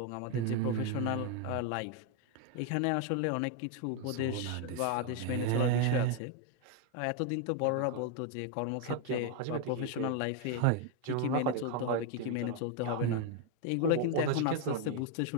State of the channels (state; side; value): different; both; correlation 0.01